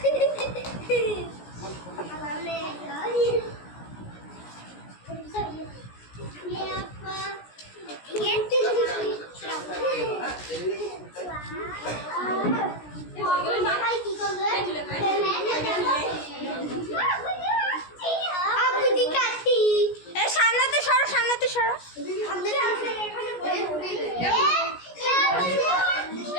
সামনেতে সরো সামনেতে সরো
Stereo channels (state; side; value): late; right; 17 ms